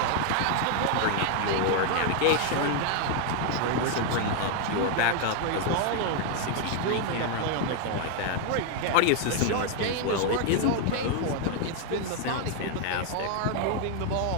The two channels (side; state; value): both; different; correlation 0.01